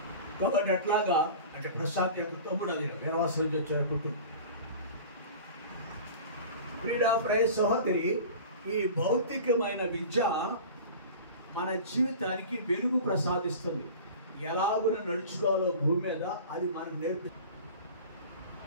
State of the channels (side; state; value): both; inverted; correlation -0.38